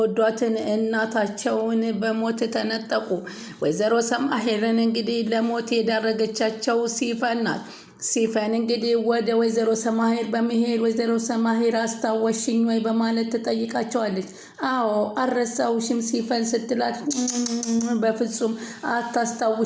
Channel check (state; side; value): identical; both; correlation 1.00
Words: እናታቸውን በሞት ተነጠቁ። ወይዘሮ ሰማሄርን እንግዲህ ለሞት የዳረገቻቸው ሲፈን ናት። ሲፈን እንግዲህ ወደ ወይዘሮ ሰማሄር በመሄድ ወይዘሮ ሰማሄር አስታወሽኝ ወይ በማለት ትጠይቃቸዋለች። አዎ አልረሳውሽም ሲፈን ስትላት በፍጹም